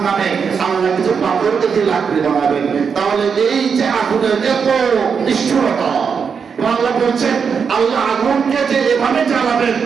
আল্লাহ কিছু পাথরকে দিয়ে লাকড়ি বানাবেন। তাহলে এই যে আগুনের এত নিষ্ঠুরতা, আল্লাহ বলছেন আল্লাহ আগুনকে যে এভাবে জ্বালাবেন,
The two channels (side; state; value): left; quieter; 6.2 dB